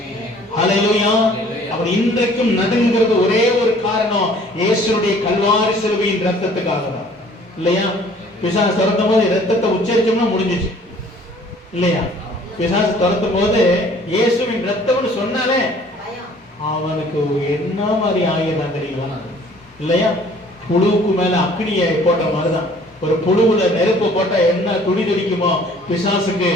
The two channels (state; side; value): normal; both; correlation 0.54